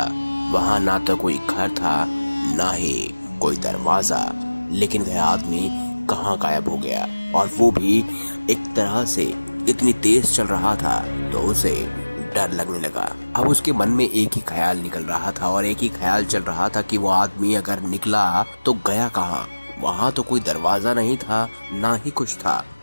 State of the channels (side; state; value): both; inverted; correlation -1.00